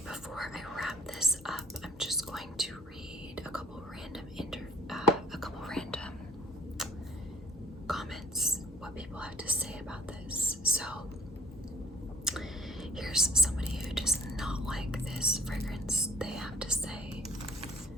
before I wrap this up, I'm just going to read a couple random comments, what people have to say about this. So here's somebody who does not like this fragrance. They have to say,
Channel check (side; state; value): both; normal; correlation 0.56